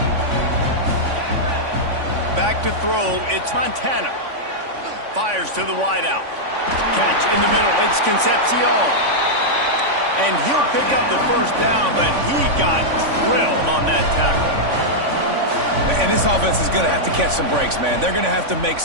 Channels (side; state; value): left; late; 3.5 ms